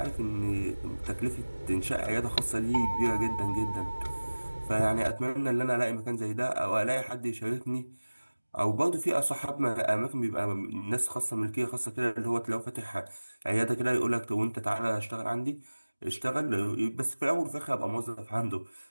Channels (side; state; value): both; inverted; correlation -1.00